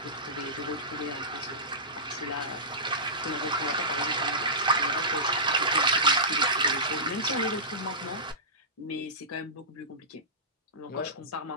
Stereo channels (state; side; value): normal; both; correlation -0.20